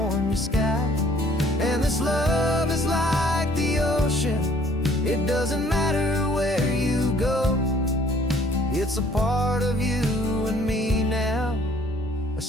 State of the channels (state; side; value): normal; both; correlation 0.59